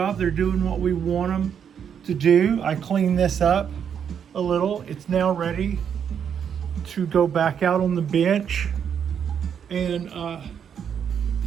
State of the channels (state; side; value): quieter; left; 8.0 dB